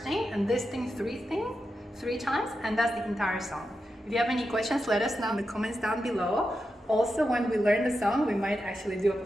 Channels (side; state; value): both; normal; correlation 0.89